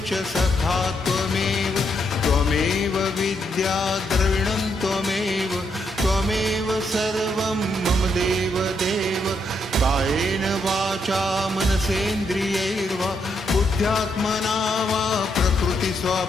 सखा त्वमेव त्वमेव विद्या द्रविणं त्वमेव त्वमेव सर्वं मम देव देव कायेन वाचा मनसेन्द्रियैर्वा बुद्ध्यात्मना वा प्रकृति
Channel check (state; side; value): normal; both; correlation 0.78